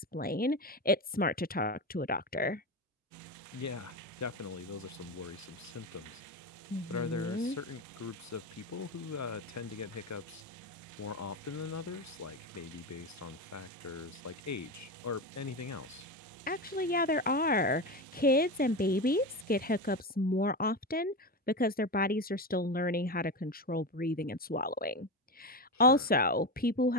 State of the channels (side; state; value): both; normal; correlation 0.19